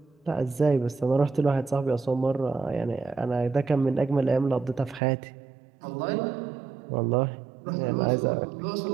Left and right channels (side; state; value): left; drops out; at 5.0 s